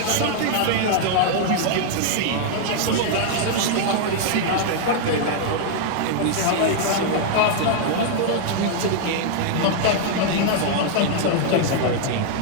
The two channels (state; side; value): different; both; correlation 0.00